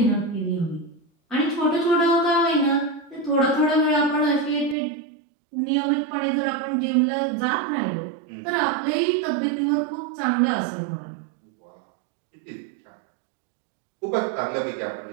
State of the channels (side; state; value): left; drops out; at 4.8 s